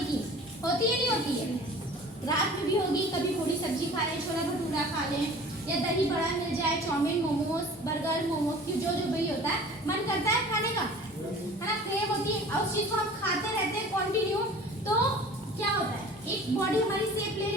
की, होती है नहीं होती है? रात में भी होगी, कभी थोड़ी सब्जी खा लें, छोला भटूरा खा लें, या दही बड़ा मिल जाए, चाउमीन, मोमोज, बर्गर, मोमोज, जो जो भी होता है, मन करता है खाने का, है ना, क्रेव होती है। और उस चीज को हम खाते रहते हैं कंटिन्यू, तो क्या होता है, एक बॉडी हमारी शेप ले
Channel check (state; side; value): normal; both; correlation 0.44